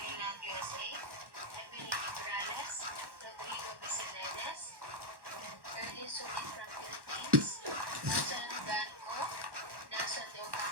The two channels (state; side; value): late; left; 1.1 ms